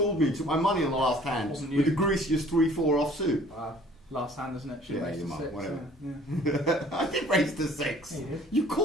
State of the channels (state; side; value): normal; both; correlation 0.54